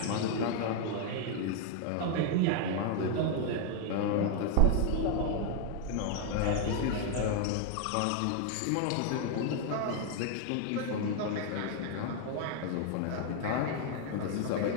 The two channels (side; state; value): both; different; correlation 0.00